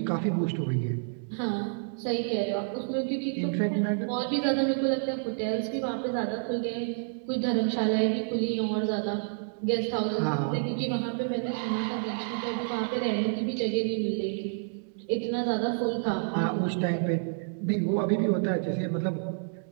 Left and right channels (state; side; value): silent; left; digital silence